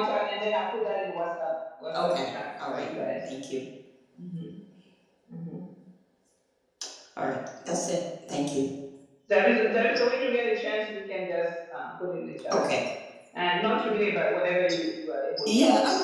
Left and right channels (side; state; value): both; identical; correlation 1.00